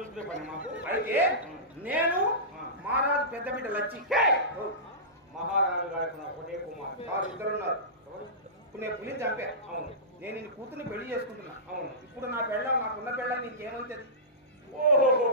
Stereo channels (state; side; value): normal; both; correlation -0.20